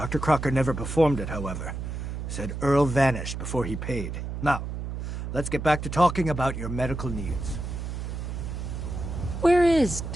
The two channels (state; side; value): noise; right; hum, 5 dB below the sound